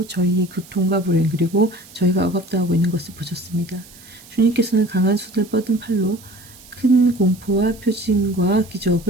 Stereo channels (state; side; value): noise; right; hiss, 22 dB below the sound